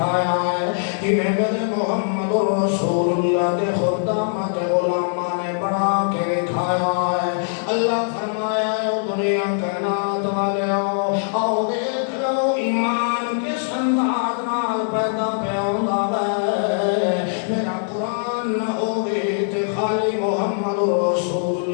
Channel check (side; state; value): right; silent; digital silence